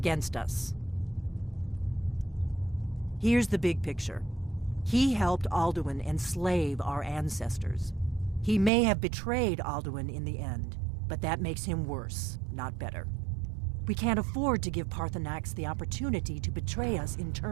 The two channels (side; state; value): left; drops out; at 8.7 s